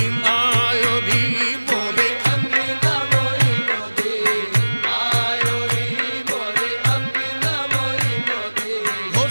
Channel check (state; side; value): inverted; both; correlation -1.00